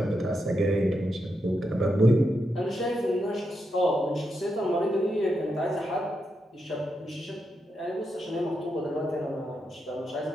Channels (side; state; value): both; normal; correlation 0.84